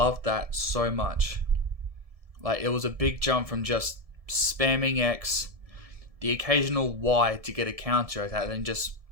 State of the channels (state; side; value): late; left; 1.7 ms